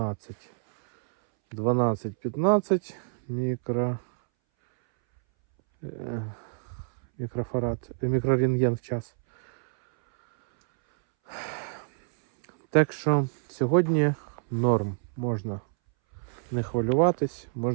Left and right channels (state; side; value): silent; left; 60 dB below the other